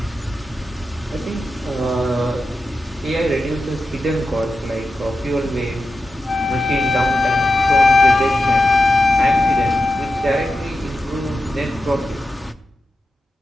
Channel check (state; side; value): normal; both; correlation 0.90